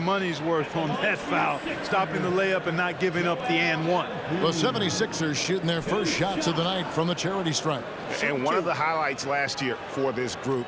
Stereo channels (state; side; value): identical; both; correlation 1.00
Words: worth on that foul, stopping the layup and not giving up the and one. The 76ers shooting their first shots of the night from the charity stripe. And one of the highlights last year for this